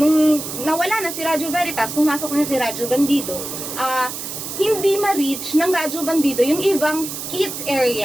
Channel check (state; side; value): noise; right; hiss, 7 dB below the sound